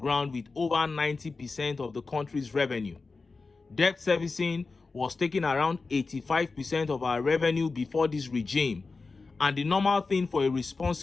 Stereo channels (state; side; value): quieter; right; 4.1 dB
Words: with over 90% of the country's revenue. Debt servicing was taking around 85% of our revenue before this regime, and the normal thing for a